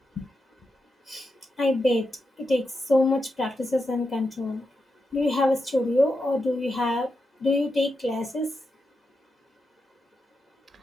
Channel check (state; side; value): normal; both; correlation 0.87